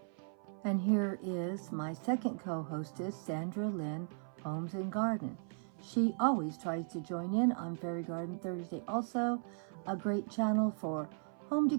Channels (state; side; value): silent; left; 53 dB below the other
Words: And here is my second co-hostess, Sandra Lynn, Homes and Garden. She always tries to join in on Fairy Garden Thursday. Also, a great channel for home